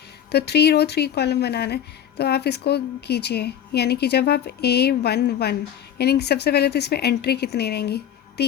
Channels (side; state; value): right; quieter; 9.6 dB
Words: तो 3 रो 3 कॉलम बनाना है। तो आप इसको कीजिए, यानी कि जब आप A11, यानी कि सबसे पहले तो इसमें एंट्री कितनी रहेंगी?